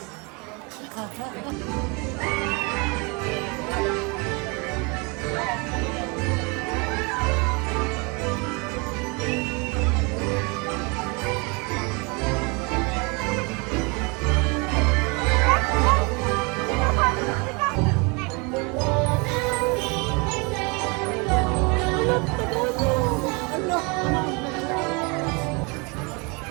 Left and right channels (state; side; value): quieter; left; 30.0 dB